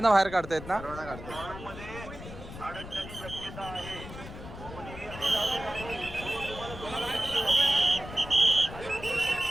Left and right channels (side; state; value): left; noise; rumble, 12 dB below the sound